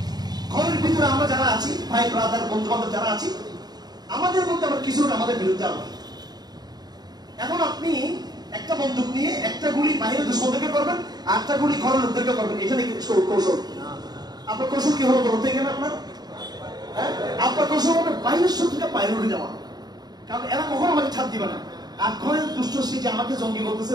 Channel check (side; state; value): left; late; 0.20 ms